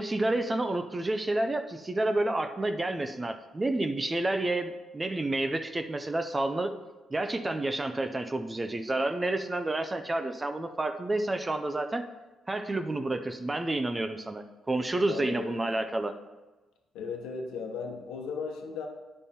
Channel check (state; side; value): normal; both; correlation 0.93